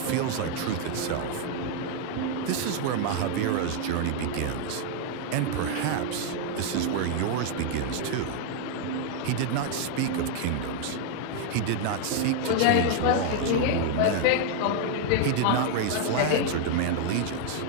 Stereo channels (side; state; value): both; different; correlation 0.00